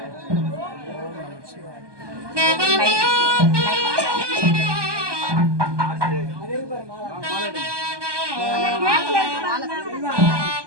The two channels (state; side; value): late; left; 1.2 ms